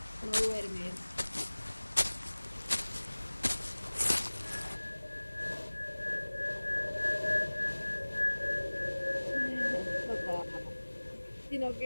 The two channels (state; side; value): inverted; both; correlation -1.00